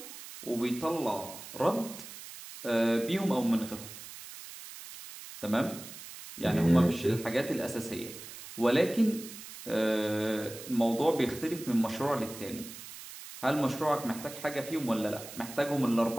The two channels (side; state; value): right; noise; hiss, 13 dB below the sound